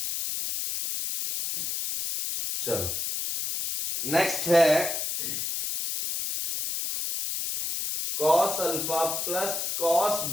चलो नेक्स्ट है cos alpha plus cos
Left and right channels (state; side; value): noise; left; hiss, 2 dB below the sound